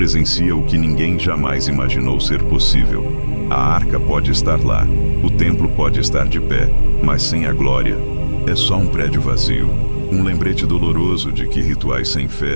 o que ninguém jamais imaginou ser possível. A arca pode estar lá, o templo pode estar de pé, mas sem a glória, é só um prédio vazio. Um lembrete doloroso de que rituais sem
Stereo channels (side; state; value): both; inverted; correlation -1.00